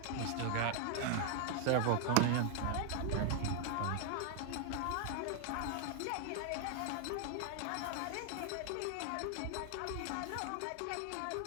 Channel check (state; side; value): different; both; correlation 0.00